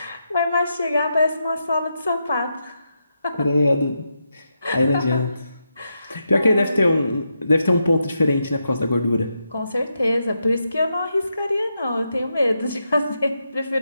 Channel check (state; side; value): inverted; both; correlation -0.84